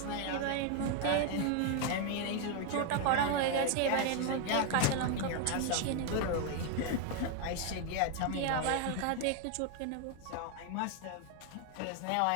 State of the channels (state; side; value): different; both; correlation 0.01